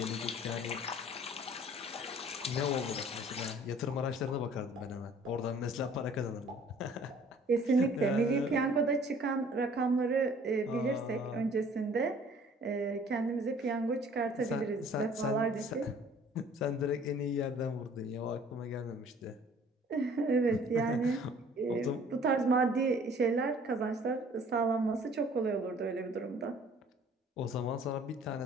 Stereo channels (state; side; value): normal; both; correlation 0.53